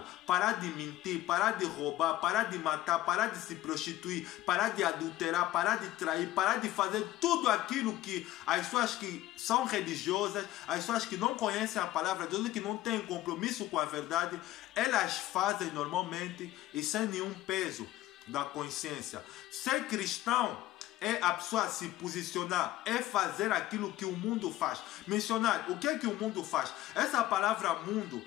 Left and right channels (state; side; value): quieter; right; 15.2 dB